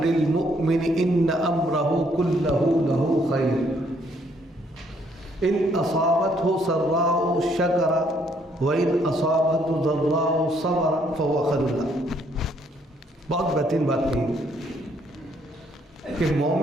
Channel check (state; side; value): normal; both; correlation 0.68